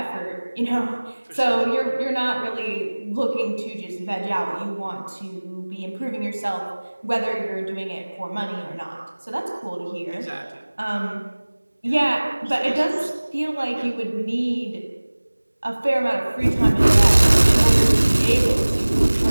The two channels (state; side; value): inverted; both; correlation -1.00